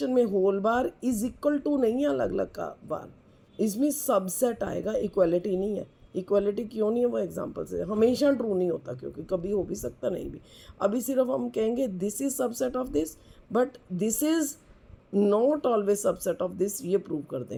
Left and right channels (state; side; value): identical; both; correlation 1.00